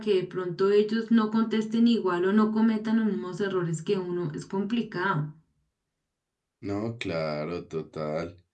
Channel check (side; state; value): both; identical; correlation 1.00